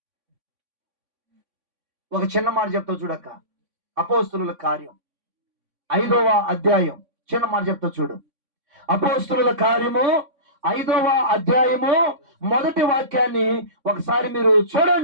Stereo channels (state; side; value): late; left; 3.5 ms